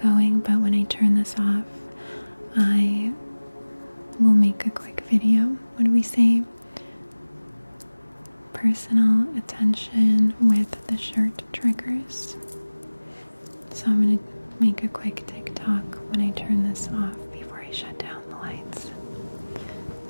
but when I turn this off, I will make a quick video. What do we say? Personal attention with the shirt triggers. So I'm gonna make a quick TikTok when I turn this off before I shut down the lights,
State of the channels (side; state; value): both; inverted; correlation -1.00